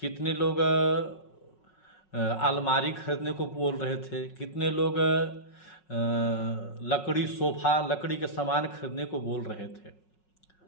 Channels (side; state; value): right; late; 5.4 ms